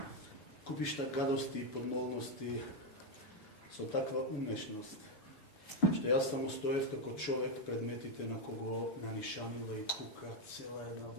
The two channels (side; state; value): right; late; 7.0 ms